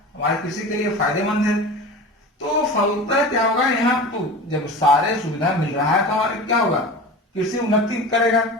हमारे कृषि के लिए फायदेमंद है। तो फलतः क्या होगा, यहाँ तो जब सारे सुविधा मिल रहा है तो हमारे क्या होगा, कृषि उन्नति करेगा,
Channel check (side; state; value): both; normal; correlation 0.33